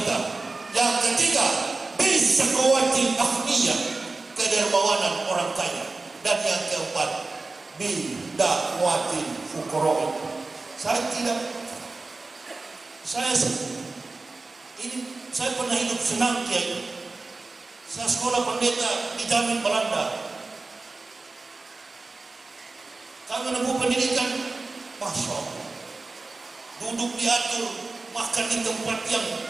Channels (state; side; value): quieter; left; 3.5 dB